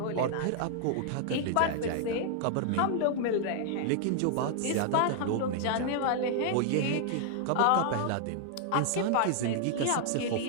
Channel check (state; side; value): different; both; correlation -0.01